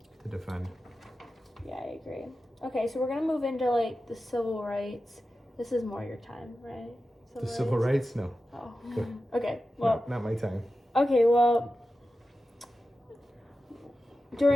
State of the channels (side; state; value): both; normal; correlation 0.92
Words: to defend. Yeah, I agree. Okay, so we're gonna move into like the civil rights. This is more your time, right? Civil rights? No. Oh. Good. Okay. Well. Not my time. Okay. Well.